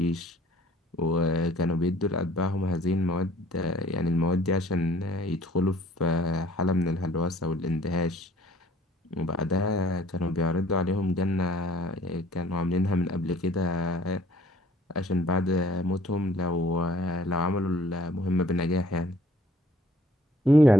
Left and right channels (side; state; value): both; normal; correlation 0.57